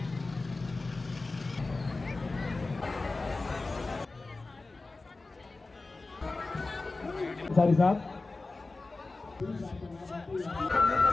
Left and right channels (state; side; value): quieter; right; 3.5 dB